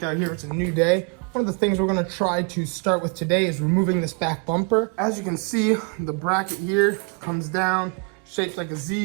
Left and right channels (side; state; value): left; quieter; 33.8 dB